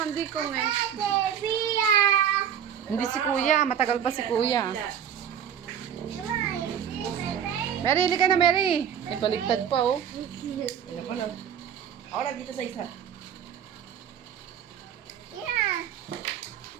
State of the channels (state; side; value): quieter; left; 8.9 dB